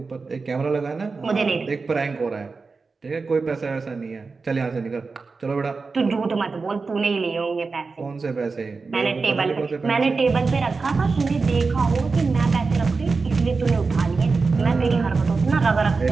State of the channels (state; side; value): quieter; left; 4.3 dB